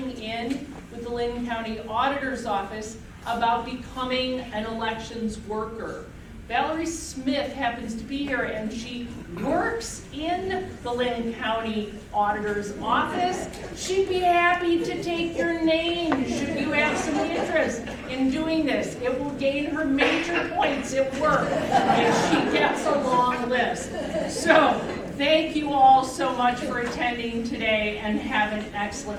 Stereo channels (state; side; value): identical; both; correlation 1.00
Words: in with the Linn County Auditor's Office about becoming an elections worker. Valerie Smith happens to be here, and she works in the Linn County Auditor's Office. She'd be happy to take your name should you have some interest in doing this. It will gain her major points at work if she gets a long list. So, thank you all so much for attending today, and have an